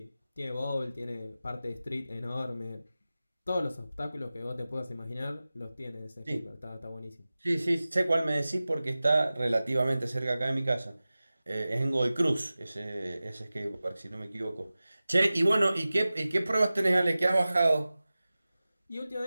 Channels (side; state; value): both; inverted; correlation -0.96